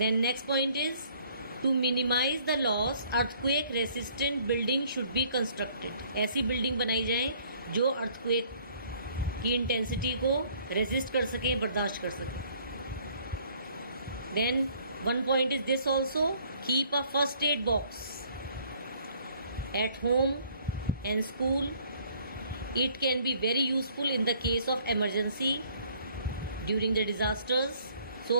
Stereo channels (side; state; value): both; inverted; correlation -0.60